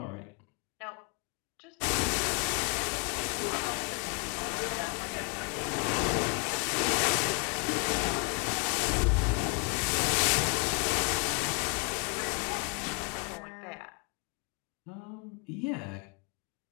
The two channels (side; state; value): right; quieter; 34.3 dB